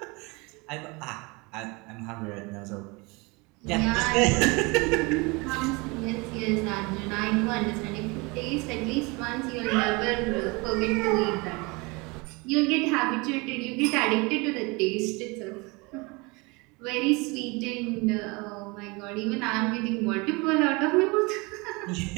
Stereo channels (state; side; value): quieter; left; 26.7 dB